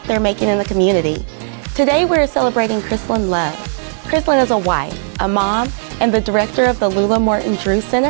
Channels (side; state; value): left; silent; 67 dB below the other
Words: they're making in the community. Today we're celebrating Krissalyn Love. Krissalyn is a wife, a mom, and the director of the Lula Morton Drewes